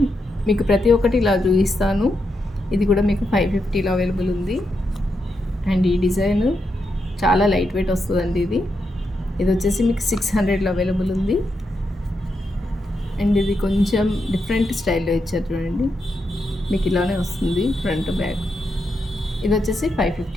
మీకు ప్రతి ఒక్కటి ఇలా చూపిస్తాను. ఇది కూడా మీకు 550లో అవైలబుల్ ఉంది. అండ్ ఈ డిజైన్ చాలా లైట్ వెయిట్ వస్తుందండి. ఇది వచ్చేసి మీకు 600లో అవైలబుల్ ఉంది. అండ్ ఇది కొంచెం డిఫరెంట్ స్టైల్లో ఇచ్చారు చూడండి, మీకు ఇలానే వస్తుంది ఫ్రంట్ బ్యాక్. ఇది వచ్చేసి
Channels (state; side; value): normal; both; correlation 0.84